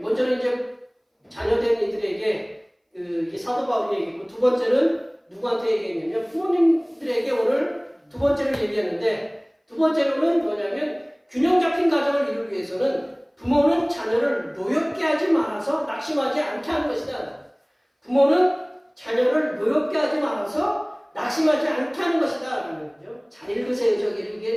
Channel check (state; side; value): identical; both; correlation 1.00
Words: 이제 자녀된 이들에게 이 사도 바울이 얘기했고, 두 번째는 누구한테 얘기했냐면 부모님들에게 오늘 두 번째를 얘기했는데, 두 번째로는 뭐냐면 균형 잡힌 가정을 이루기 위해서는 부모는 자녀를 노엽게 하지 말아서 낙심하지 않게 하는 것이다. 부모는 자녀를 노엽게 하지 말아서 낙심하지 않게 하는 것이다. 라는 거죠. 잘 읽으세요. 저기